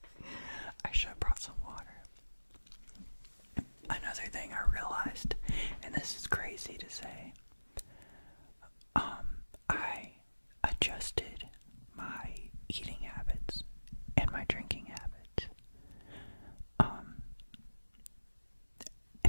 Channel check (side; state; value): both; inverted; correlation -1.00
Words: I should have brought some water. Another thing I realized, and this is crazy to say, I adjusted my eating habits and my drinking habits.